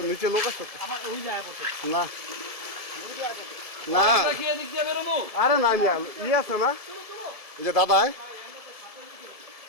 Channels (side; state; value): right; late; 1.7 ms